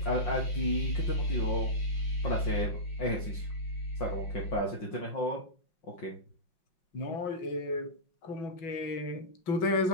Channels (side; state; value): right; late; 5.5 ms